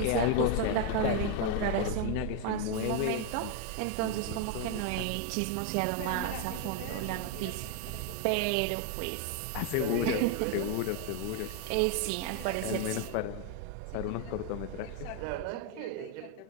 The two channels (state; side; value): different; both; correlation 0.01